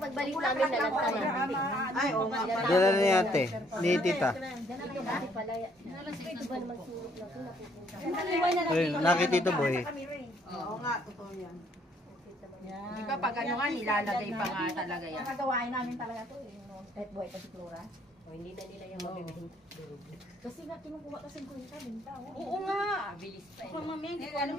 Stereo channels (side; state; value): both; normal; correlation 0.65